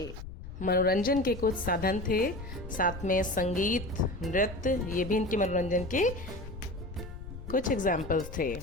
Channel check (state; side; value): noise; left; rumble, 11 dB below the sound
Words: मनोरंजन के कुछ साधन थे। साथ में संगीत, नृत्य, ये भी इनके मनोरंजन के कुछ एग्जाम्पल्स थे।